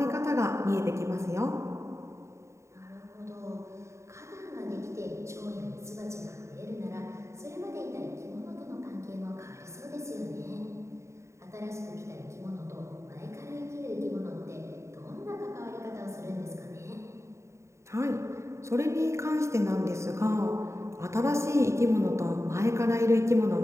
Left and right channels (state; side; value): late; left; 0.14 ms